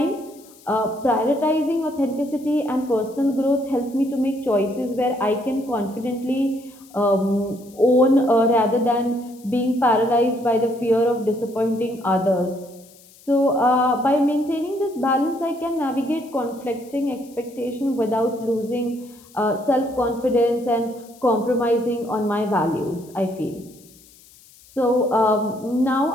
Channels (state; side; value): noise; left; hiss, 25 dB below the sound